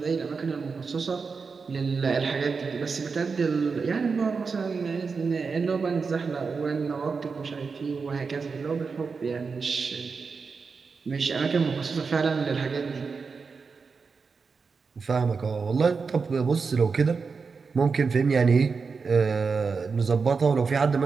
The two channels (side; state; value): left; quieter; 5.0 dB